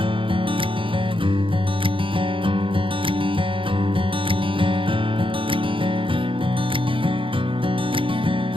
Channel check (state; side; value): late; left; 0.25 ms